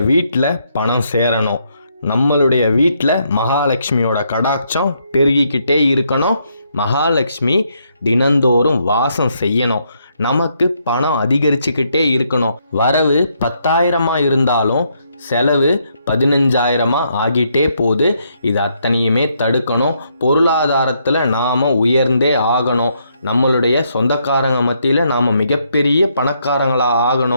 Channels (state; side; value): inverted; both; correlation -0.75